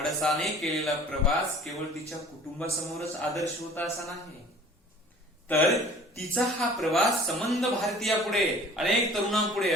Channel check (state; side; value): normal; both; correlation 0.47